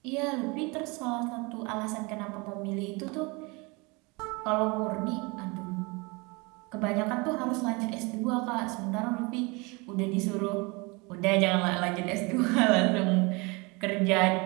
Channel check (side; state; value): left; quieter; 27.5 dB